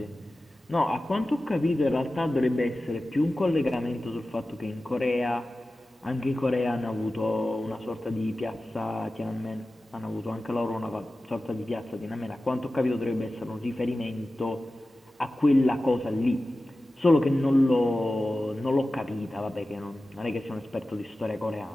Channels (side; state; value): both; normal; correlation 0.95